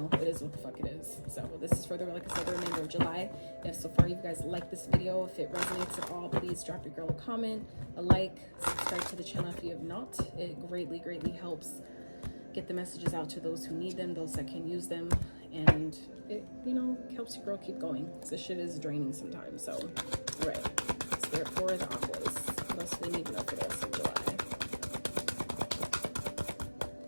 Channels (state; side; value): inverted; both; correlation -1.00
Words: it is what the fuck it is. So this is for the, like I said, the remainder of July. If so far you guys like this video, if it resonates at all, please drop your girl a comment, a like, subscribe to the channel if you have not. It greatly, greatly helps get the messages out to those who need them, those that can use them, and it, you know, helps your girl keep going. This shit is draining sometimes. So, all right, Spirit for the Aquas. What else do we need to know for this in July?